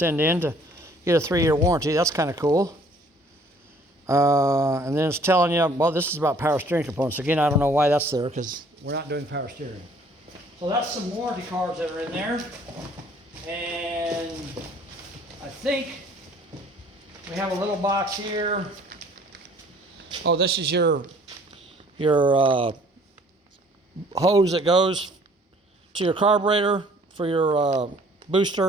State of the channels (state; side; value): normal; both; correlation 0.57